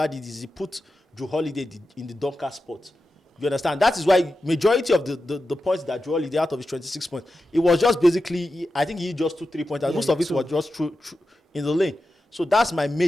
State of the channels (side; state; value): both; normal; correlation 0.91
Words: did is he put Drew Holiday in the dunker spot. You understand? That is why majority of the points that Drew Holiday out of his 26 points, it was just basically, I think he just 2 3-pointers. Yeah, Most of it was just through in the lane. So that's my